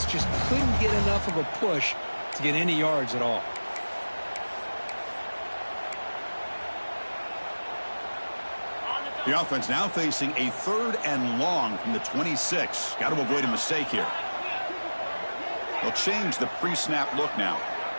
just couldn't get enough of a push to get any yards at all. The offense now facing a 3rd and long from the 26. Got to avoid a mistake here. They'll change the pre-snap look now.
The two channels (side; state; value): both; inverted; correlation -1.00